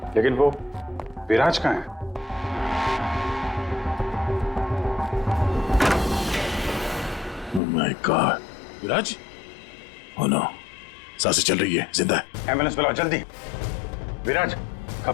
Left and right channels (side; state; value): right; drops out; at 7.6 s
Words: लेकिन वो विराज कहाँ है? Oh my God, Viraj? Oh no, सांसें चल रही है, जिंदा है। एम्बुलेंस बुलाओ जल्दी। विराज